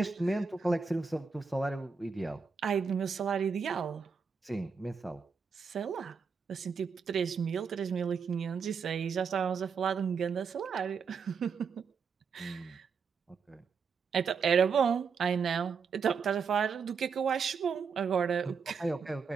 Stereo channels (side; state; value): left; quieter; 5.7 dB